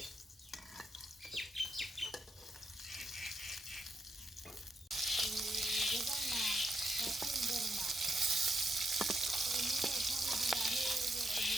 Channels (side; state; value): both; normal; correlation 0.82